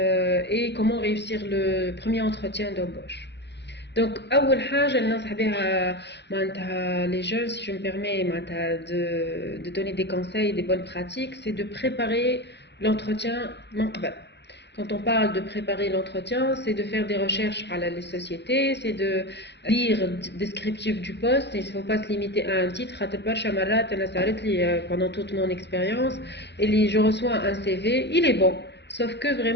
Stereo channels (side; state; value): right; late; 0.50 ms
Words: et comment réussir le premier entretien d'embauche. Donc أول حاجة اللي ننصح بها معناتها les jeunes, si je me permets معناتها de donner des conseils, des bonnes pratiques, c'est de préparer l'entretien من قبل. Quand on parle de préparer l'entretien, c'est de faire des recherches à les sociétés, c'est de lire le descriptif du poste, et il ne faut pas se limiter à un titre. Pendant toute mon expérience, et je reçois un CV, il est bon, sauf que